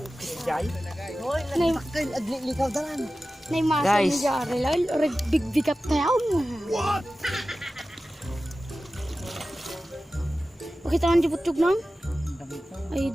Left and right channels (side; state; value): both; normal; correlation 0.95